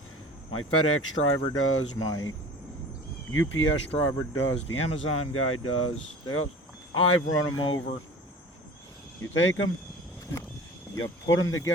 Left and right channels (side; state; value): both; normal; correlation 0.41